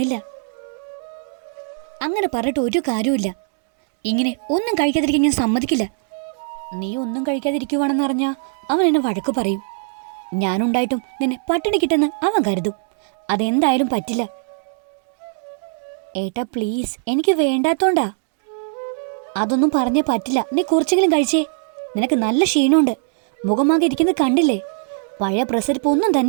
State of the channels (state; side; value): silent; left; digital silence